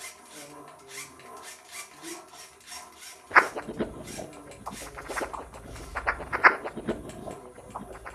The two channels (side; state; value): both; identical; correlation 1.00